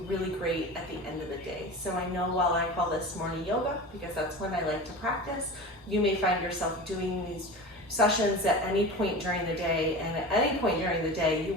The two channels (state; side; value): normal; both; correlation 0.32